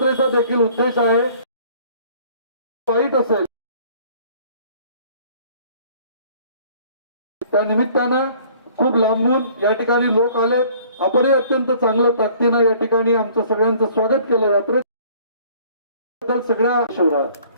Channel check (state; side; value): inverted; both; correlation -0.54